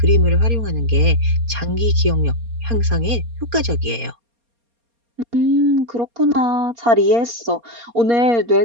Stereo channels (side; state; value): left; late; 4.3 ms